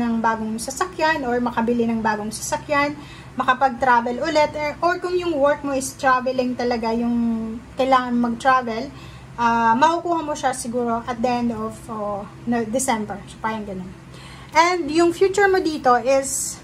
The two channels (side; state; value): both; identical; correlation 1.00